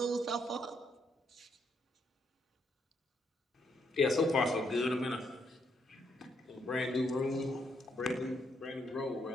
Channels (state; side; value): normal; both; correlation 0.75